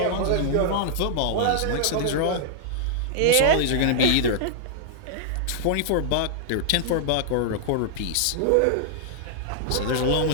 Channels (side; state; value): both; different; correlation -0.01